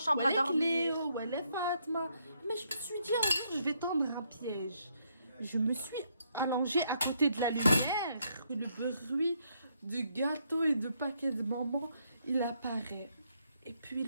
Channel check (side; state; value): both; inverted; correlation -0.74